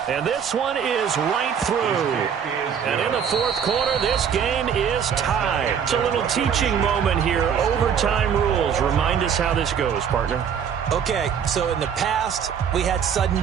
And this one is right through. And in the fourth quarter, this game is tied. It's a little teaching moment here. Overtime rules. Remind us how this goes, partner. Okay, so in the past, we had sudden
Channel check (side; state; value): left; quieter; 7.7 dB